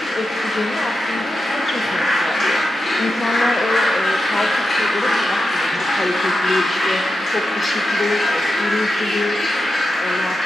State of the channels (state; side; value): normal; both; correlation 0.89